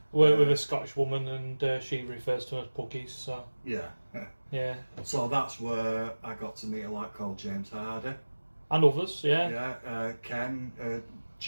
We're with a Scottish woman, and she refers to them as puggies. So yeah. So that's where I got to meet a lad called James Hardy. And others, yeah. Yeah, Ken,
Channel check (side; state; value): both; inverted; correlation -1.00